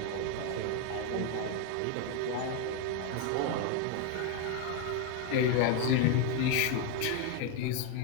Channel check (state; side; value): different; both; correlation 0.01